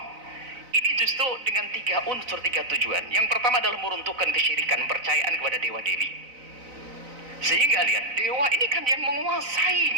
Ini justru dengan 3 unsur, 3 tujuan. Yang pertama adalah meruntuhkan kesyirikan, percayaan kepada dewa dewi. Sehingga lihat, dewa ini kan yang menguasai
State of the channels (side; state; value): left; late; 4.0 ms